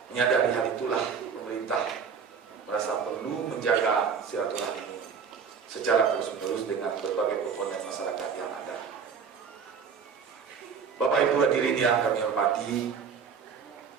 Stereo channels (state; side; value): quieter; left; 6.3 dB